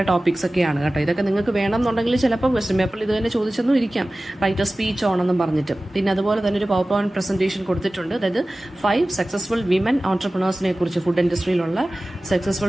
ടോപ്പിക്സ് ഒക്കെയാണ് കേട്ടോ. ഇതൊക്കെ നിങ്ങൾക്ക് വേണമെന്നുണ്ടെങ്കിൽ ചിലപ്പോൾ ക്വസ്റ്റ്യൻ പേപ്പറിൽ ഇത് തന്നെ ചോദിച്ചെന്നും ഇരിക്കാം, റൈറ്റ് എ സ്പീച്ച് ഓണെന്നും പറഞ്ഞിട്ട്. പിന്നെ അതുപോലെ തന്നെ ഒരു പവർ പോയിന്റ് പ്രസന്റേഷൻ കൊടുത്തിട്ടുണ്ട്. അതായത് 5 സക്സസ്ഫുൾ വിമൻ ഓൺട്രപ്രണേഴ്സിനെ കുറിച്ച്, ഫുഡ് ഇൻഡസ്ട്രിയിലുള്ള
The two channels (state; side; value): normal; both; correlation 0.97